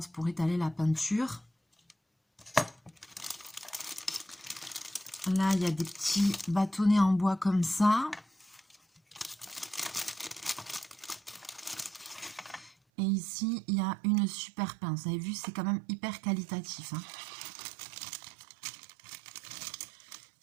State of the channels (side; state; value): left; drops out; at 12.8 s